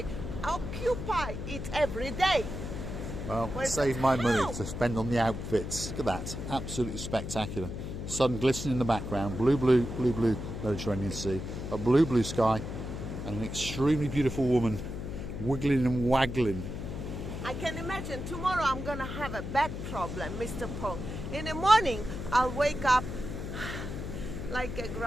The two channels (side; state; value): left; noise; hum, 6 dB below the sound